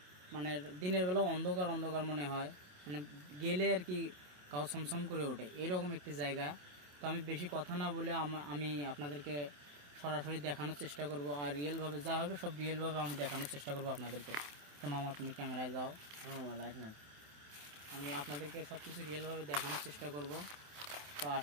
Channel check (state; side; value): late; left; 27 ms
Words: মানে দিনের বেলা অন্ধকার অন্ধকার মনে হয়, মানে গেলে আর কি গাও ছমছম করে ওঠে, এরকম একটি জায়গা। তো আমি বেশি কথা না বলে আমি আপনাদেরকে সরাসরি দেখানোর চেষ্টা করব, আর রিয়েলভাবে যা হবে সব রিয়েলভাবে আমি দেখানোর চেষ্টা করব আপনাদেরকে। তো মামা, তুমি ক্যামেরায় যাও। লাইট না, আমি আপনাদেরকে সব কিছু রিয়েলভাবে দেখানোর চেষ্টা করব। তো